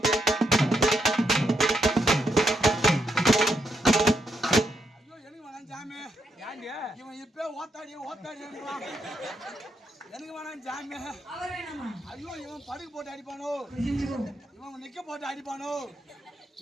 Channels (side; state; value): both; normal; correlation 0.80